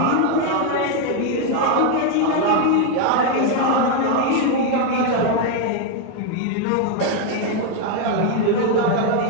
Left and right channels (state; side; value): different; both; correlation 0.01